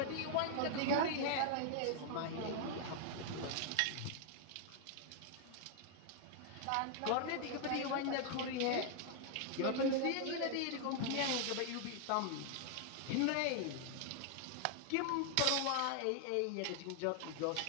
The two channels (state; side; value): different; both; correlation 0.00